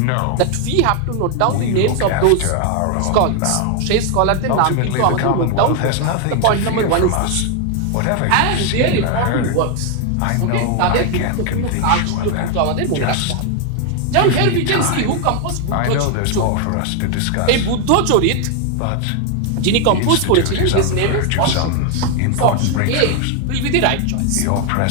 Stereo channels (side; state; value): both; different; correlation 0.01